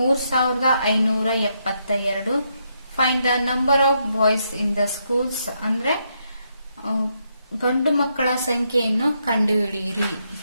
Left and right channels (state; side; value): inverted; both; correlation -0.78